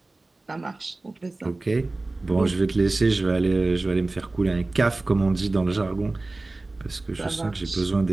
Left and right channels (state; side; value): quieter; left; 3.1 dB